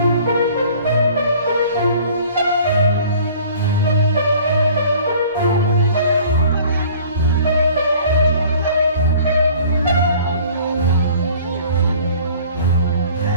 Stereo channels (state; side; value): inverted; both; correlation -0.50